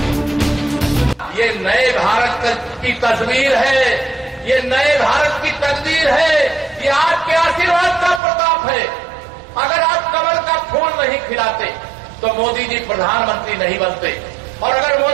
ये नए भारत की तस्वीर है, ये नए भारत की तकदीर है, ये आपके आशीर्वाद का प्रताप है। अगर आप कमल का फूल नहीं खिलाते तो मोदी जी प्रधानमंत्री नहीं बनते, और अगर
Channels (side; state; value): left; drops out; at 8.2 s